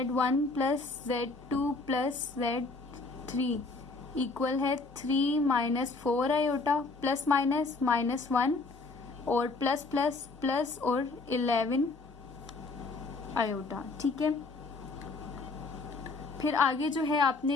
plus Z2 plus Z3 equal है 3 माइनस 4 आयोटा प्लस माइनस -1 और प्लस प्लस प्लस और 11 आयोटा, ठीक है। फिर आगे जो है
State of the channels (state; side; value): quieter; right; 3.7 dB